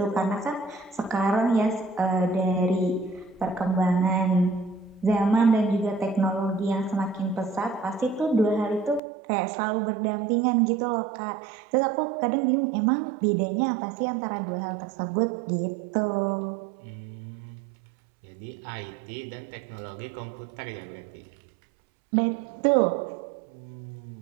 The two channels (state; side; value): drops out; left; at 9.0 s